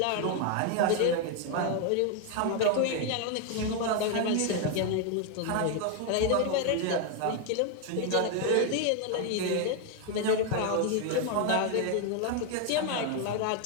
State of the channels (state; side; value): different; both; correlation 0.01